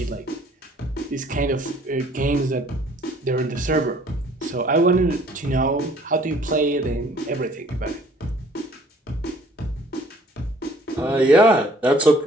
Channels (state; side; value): normal; both; correlation 0.56